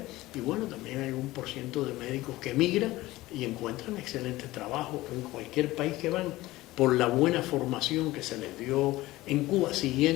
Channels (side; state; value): right; quieter; 18.2 dB